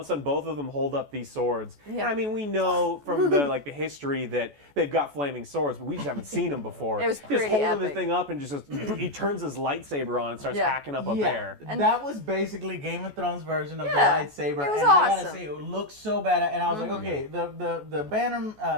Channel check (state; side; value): late; left; 14 ms